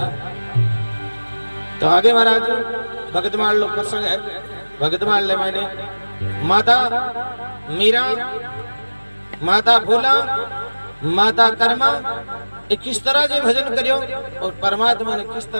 तो आगे महाराज भगतमाल लोग प्रसंग है भगतमाल ले मैंने माता मीरा माता भोला माता कर्मा किस तरह से भजन करियो और परमात्मा ने किस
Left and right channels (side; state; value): both; inverted; correlation -1.00